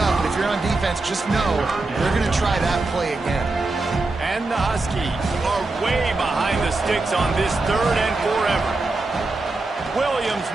but if you're on defense, just know they're going to try that play again. And the Huskies are way behind the sticks on this 3rd and forever. Williams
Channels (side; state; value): left; quieter; 3.2 dB